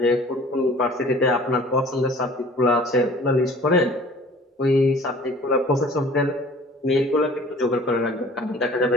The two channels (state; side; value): normal; both; correlation 0.48